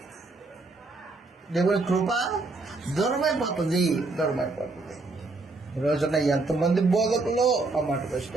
దేవుని కృప దూరమైపోతుంది. ఈ రోజున ఎంతమంది బోధకులు ఆ మాటకు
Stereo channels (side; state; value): left; quieter; 3.5 dB